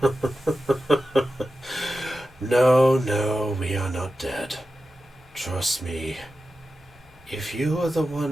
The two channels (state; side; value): normal; both; correlation 0.92